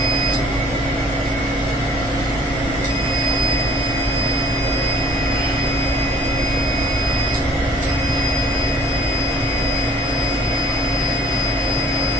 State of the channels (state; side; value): normal; both; correlation 0.55